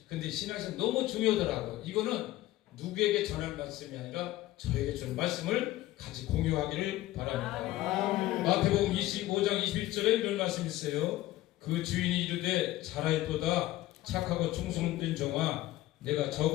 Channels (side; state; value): right; quieter; 16.0 dB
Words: 근데 신앙에서 너무 중요하더라고요. 이거는 누구에게 전할 말씀이 아니라 저에게 주는 말씀을 같이 공유하기를 바랍니다. 마태복음 25장 21절에 이런 말씀이 있어요. 그 주인이 이르되 잘하였도다 착하고 충성된 종아 내가